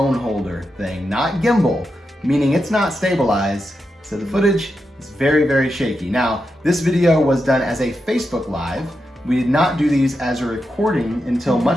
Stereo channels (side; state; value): both; normal; correlation 0.87